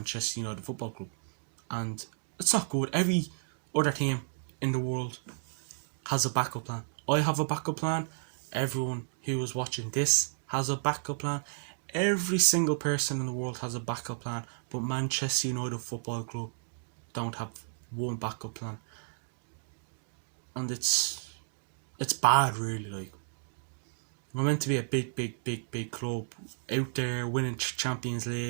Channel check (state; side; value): silent; left; digital silence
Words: United Football Club. And it's not good. Every other team in the world has a backup plan. I have a backup plan. Everyone who is watching this has a backup plan. Every single person in the world has a backup plan. But Manchester United Football Club don't have one backup plan. And it's bad, really. Like, we're meant to be a big club out there winning Champions